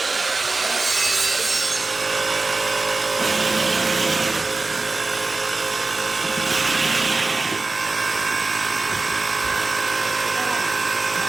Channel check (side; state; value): left; quieter; 3.5 dB